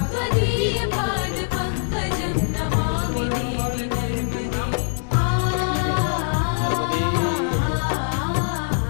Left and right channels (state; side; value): silent; right; digital silence